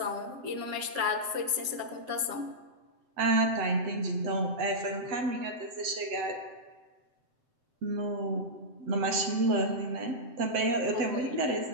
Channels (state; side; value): late; left; 7.8 ms